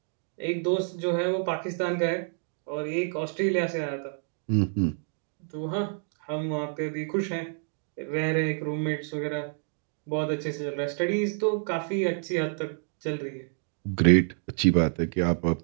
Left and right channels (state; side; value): silent; left; 59 dB below the other